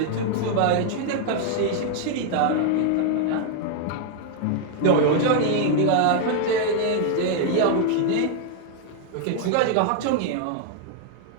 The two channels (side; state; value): both; different; correlation 0.00